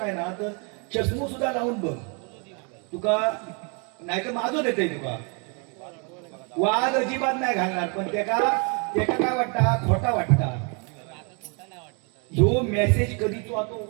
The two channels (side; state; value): left; quieter; 34.7 dB